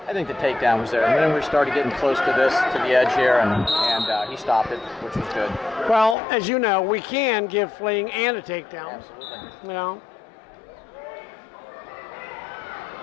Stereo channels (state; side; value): drops out; right; at 6.2 s